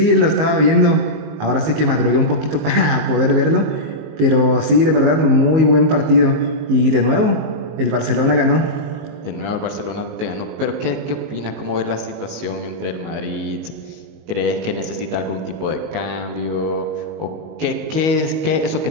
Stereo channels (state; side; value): late; left; 19 ms